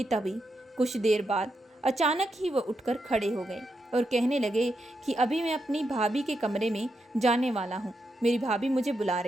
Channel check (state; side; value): normal; both; correlation 0.84